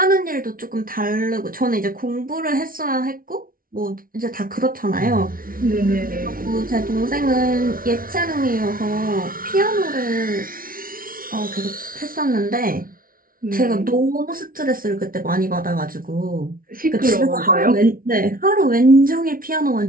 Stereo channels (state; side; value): late; left; 0.42 ms